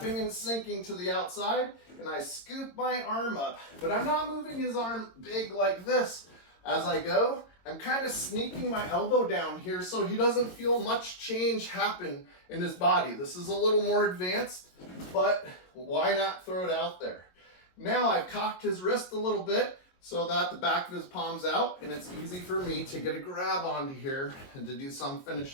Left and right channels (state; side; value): late; right; 22 ms